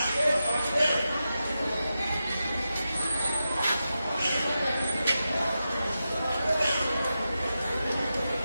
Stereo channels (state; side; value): inverted; both; correlation -0.90